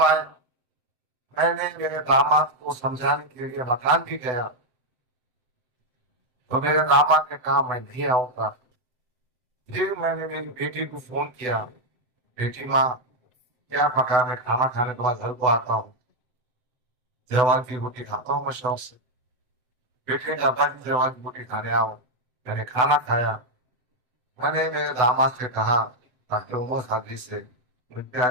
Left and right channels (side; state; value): left; late; 7.8 ms